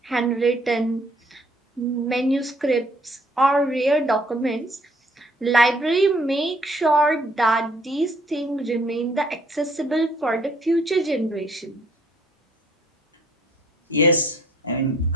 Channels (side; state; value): both; normal; correlation 0.62